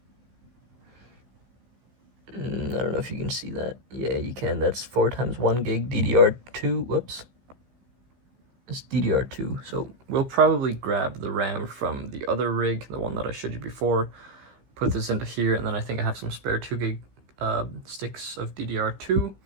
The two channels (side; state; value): left; late; 15 ms